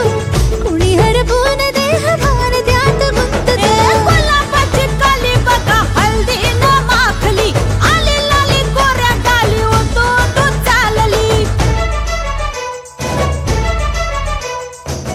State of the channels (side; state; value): both; identical; correlation 1.00